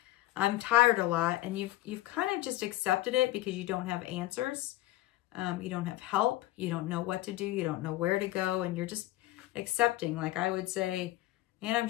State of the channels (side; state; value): right; quieter; 17.0 dB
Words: I'm tired a lot. And you've kind of just accepted it because you don't have answers. You don't have help. You don't know what to do. You don't know where to go. And you're just accepting. Like I would say, man, I'm